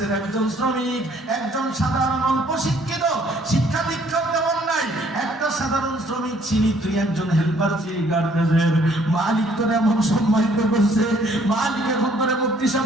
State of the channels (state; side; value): normal; both; correlation 0.62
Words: একজন শ্রমিক, একজন সাধারণ অল্প শিক্ষিত, শিক্ষা দীক্ষা তেমন নাই, একটা সাধারণ শ্রমিক ছিলি, তুই একজন হেল্পার ছিলি গার্মেন্টসের। মালিক তোর এমন সম্মানিত করছে, মালিক এখন তোরে মুক্তি সব